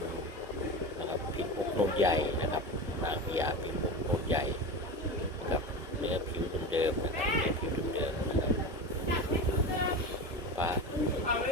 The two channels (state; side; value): normal; both; correlation 0.26